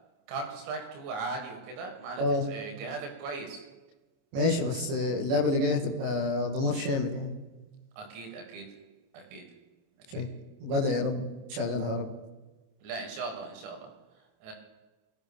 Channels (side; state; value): left; late; 29 ms